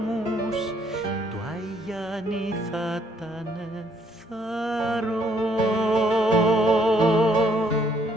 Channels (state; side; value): normal; both; correlation 0.67